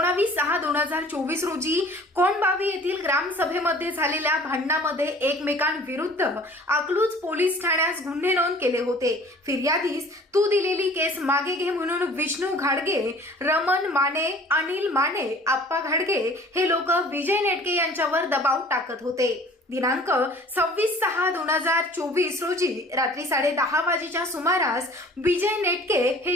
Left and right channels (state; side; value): normal; both; correlation 0.49